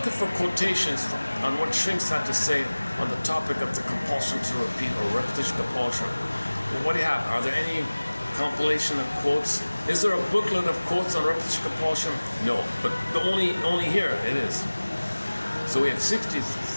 for quotations on what shrinks had to say on the topic of the compulsion to repeat or repetition compulsion. Well, what do you have? Are there any compilation of quotes? Is there a booklet of quotes on repetition compulsion? No, but only here it is. So we have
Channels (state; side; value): inverted; both; correlation -1.00